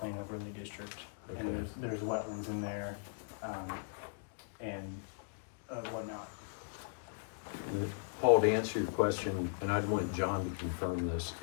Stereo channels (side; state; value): right; silent; digital silence